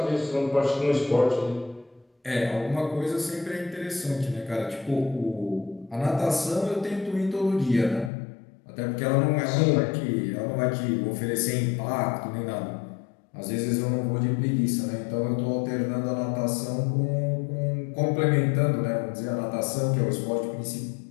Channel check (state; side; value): drops out; right; at 8.1 s